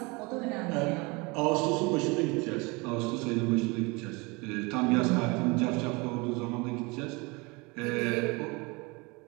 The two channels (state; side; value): quieter; left; 26.9 dB